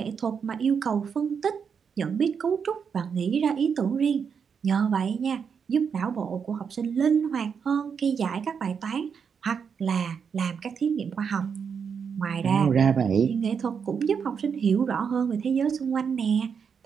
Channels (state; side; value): quieter; left; 6.6 dB